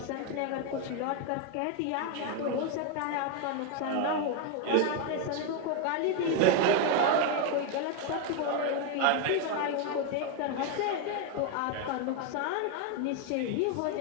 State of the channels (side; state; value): both; different; correlation 0.01